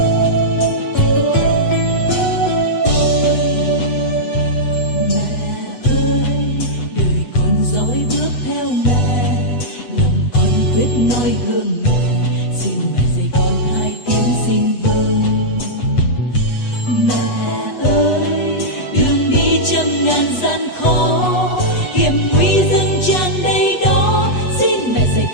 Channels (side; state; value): right; late; 8.1 ms